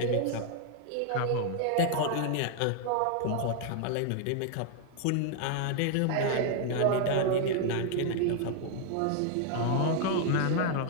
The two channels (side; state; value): both; different; correlation 0.00